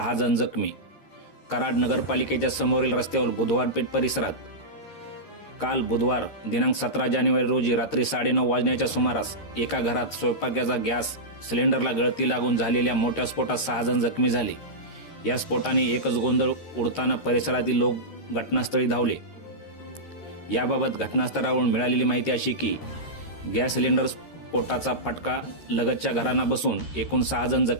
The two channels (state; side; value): late; right; 13 ms